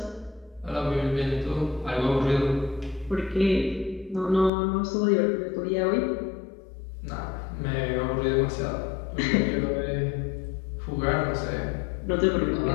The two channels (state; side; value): drops out; right; at 4.5 s